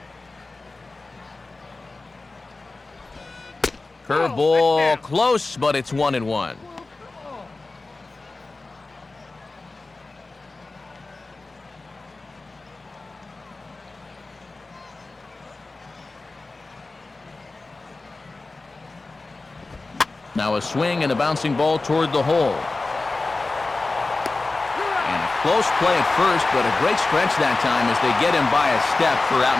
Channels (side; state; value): right; quieter; 3.4 dB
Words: Curveball close, but it's 1-1. Now a swing and a bouncing ball toward the hole. And a close play at first, but a great stretch that time as they get him by a step for out